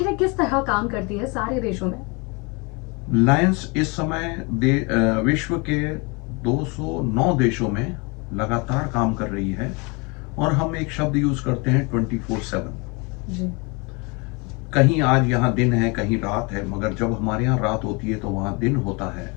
ये किस तरह काम करती है सारे देशों में? लायंस इस समय विश्व के 209 देशों में लगातार काम कर रही है। और हम एक शब्द यूज करते हैं, 24/7। जी। कहीं आज यहाँ दिन है, कहीं रात है, मगर जब हमारे यहाँ रात होती है तो वहाँ दिन होता है।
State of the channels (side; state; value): right; quieter; 29.4 dB